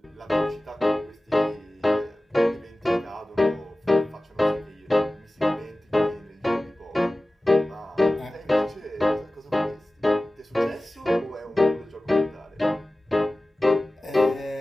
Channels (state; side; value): normal; both; correlation 0.97